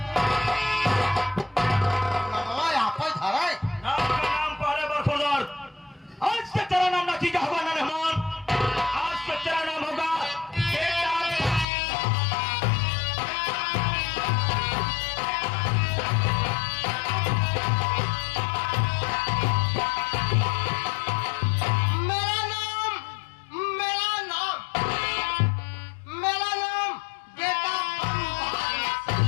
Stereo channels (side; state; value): right; drops out; at 11.7 s